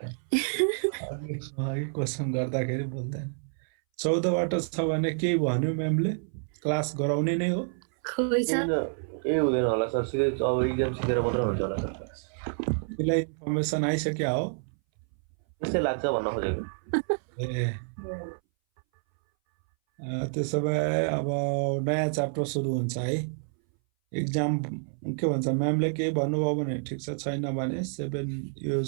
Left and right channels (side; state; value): left; silent; 59 dB below the other